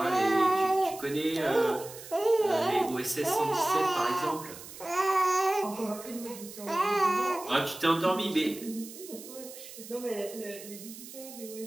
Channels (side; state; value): right; noise; hiss, 15 dB below the sound